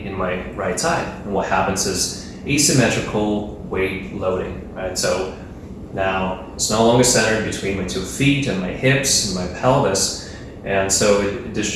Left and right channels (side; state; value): both; identical; correlation 1.00